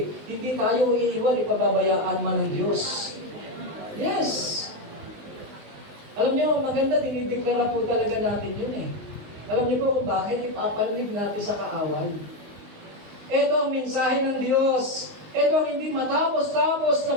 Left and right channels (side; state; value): left; late; 19 ms